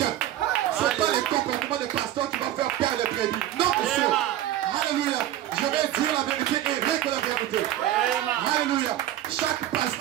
Ce n'est pas les comportements des pasteurs qui vont faire perdre les prédits. Non, monsieur. Alléluia. Je vais dire la vérité et rien que la vérité. Alléluia. Chaque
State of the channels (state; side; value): quieter; left; 12.9 dB